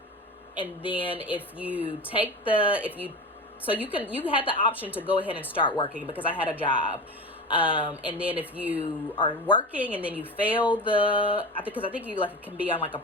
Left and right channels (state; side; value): normal; both; correlation 0.29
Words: if you had the option to go ahead and start working, because I had a job. And then if you are working and then you fail I think you like can be on like a